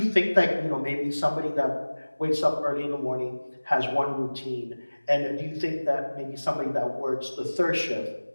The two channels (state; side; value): inverted; both; correlation -1.00